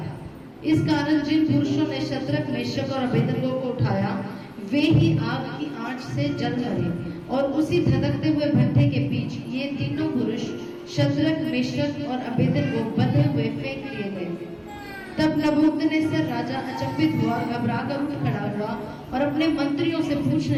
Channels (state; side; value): identical; both; correlation 1.00